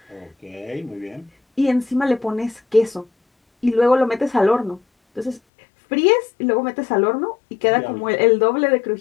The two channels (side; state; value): right; drops out; at 5.4 s